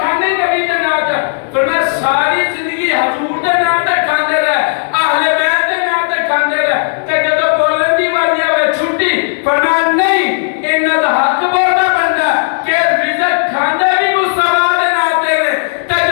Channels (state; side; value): silent; right; digital silence